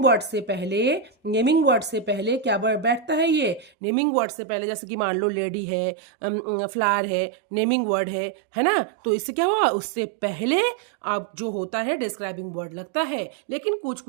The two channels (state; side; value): drops out; left; at 3.7 s